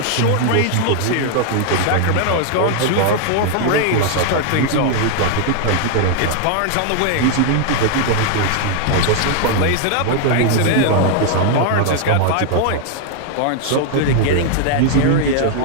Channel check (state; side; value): different; both; correlation 0.00